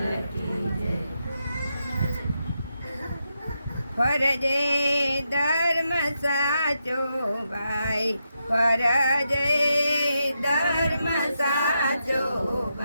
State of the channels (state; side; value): inverted; both; correlation -0.84